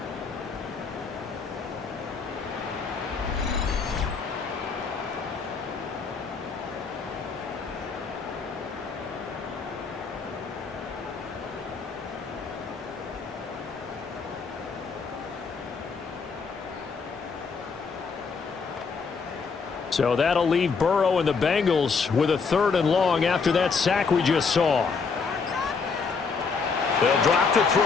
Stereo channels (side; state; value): right; quieter; 5.1 dB